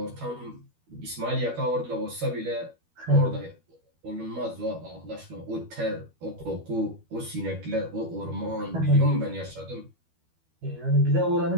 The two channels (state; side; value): late; left; 12 ms